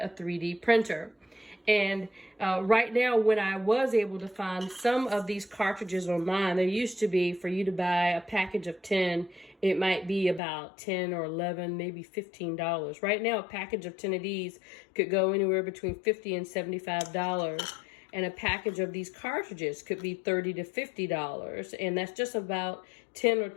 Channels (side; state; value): right; drops out; at 10.4 s